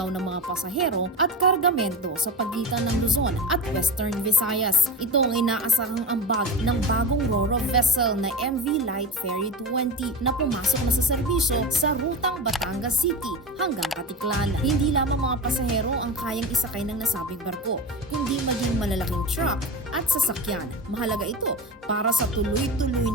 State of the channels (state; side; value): normal; both; correlation 0.26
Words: ng mga pasahero at kargamento sa pagitan ng Luzon at Western Visayas. Ito ang inaasahang ambag ng bagong ro-ro vessel na MV Light Ferry 20 na pumasok na sa serbisyo sa rutang Batangas City hanggang Katiklan. Hindi lamang mga pasahero ang kayang isakay ng nasabing barko, kundi maging malalaking truck at sasakyan. Mahalaga ito para sa tuloy-tuloy